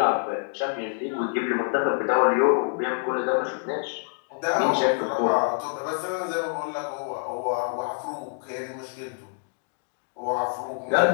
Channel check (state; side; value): silent; right; 61 dB below the other